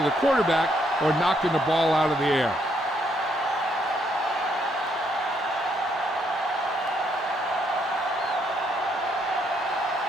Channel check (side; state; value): both; normal; correlation 0.72